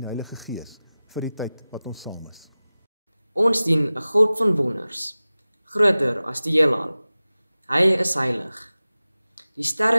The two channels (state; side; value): inverted; both; correlation -0.97